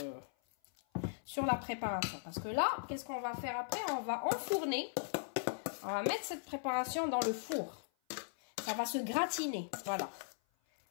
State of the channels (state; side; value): silent; right; 52 dB below the other